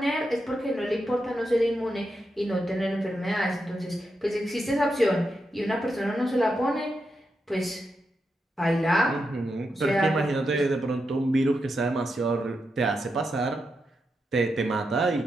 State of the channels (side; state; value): both; normal; correlation 0.86